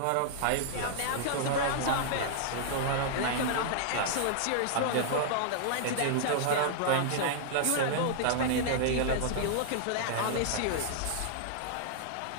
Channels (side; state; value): both; different; correlation -0.01